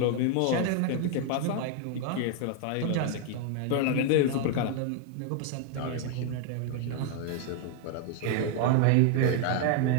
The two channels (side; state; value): both; different; correlation 0.00